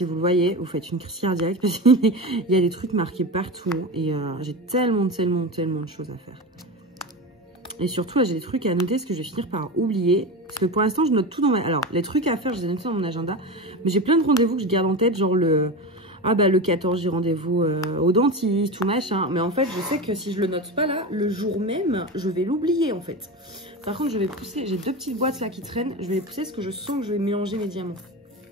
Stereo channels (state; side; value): normal; both; correlation 0.23